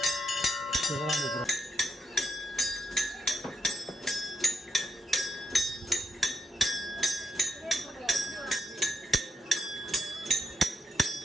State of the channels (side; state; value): both; normal; correlation 0.81